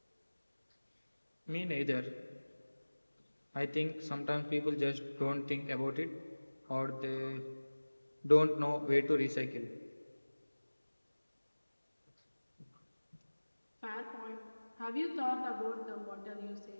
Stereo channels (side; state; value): both; inverted; correlation -1.00